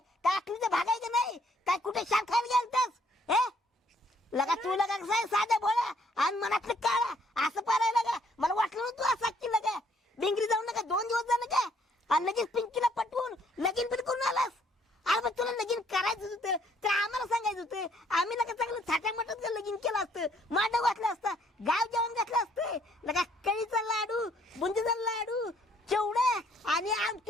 काय अक्कलीचं भागायचं नाही काय कुठे शान खायला गेलतास हे लगा तू लगा कसं साधा भोळा आणि मनातलं काळा असं पारायला का मला वाटलं ना तू असं की लगा डिंगरी जाऊन नका 2 दिवस झालं का आणि लगेच पिंकीला पटवून लगीन पण करून आलास. अरे मग तुला लगीन करायचं होतं तर आम्हाला सांगायचं होतं आम्ही लगा चांगलं थाट्या मटात लगीन केलं असतं मांडव घातलं असतं गाव जेवण घातलं असतं लगा कळीचा लाडू बुंदीचा लाडू चिवडा आणि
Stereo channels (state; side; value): normal; both; correlation 0.65